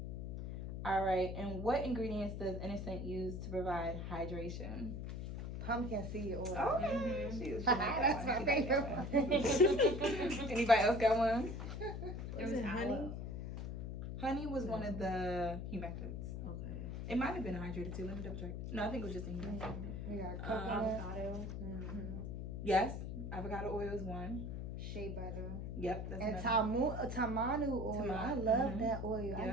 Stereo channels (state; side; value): noise; left; hum, 5 dB below the sound